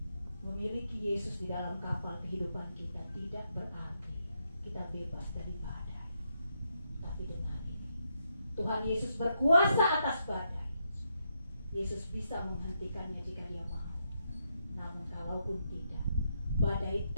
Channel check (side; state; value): both; inverted; correlation -0.81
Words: memiliki Yesus di dalam kapal kehidupan kita tidak berarti kita bebas dari badai. Tapi dengan ini, Tuhan Yesus berkuasa atas badai. Yesus bisa menghentikannya jika dia mau. Namun kalaupun tidak, badai